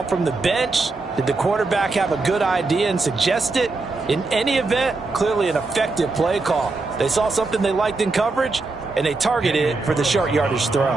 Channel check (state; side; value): quieter; left; 3.6 dB